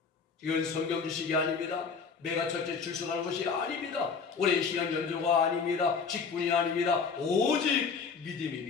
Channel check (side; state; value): right; quieter; 5.5 dB